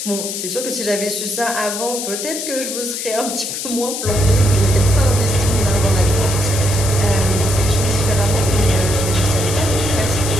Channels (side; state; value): left; noise; hiss, 5 dB below the sound